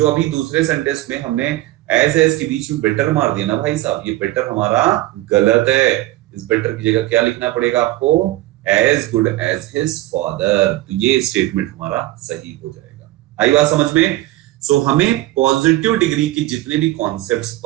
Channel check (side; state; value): left; quieter; 16.9 dB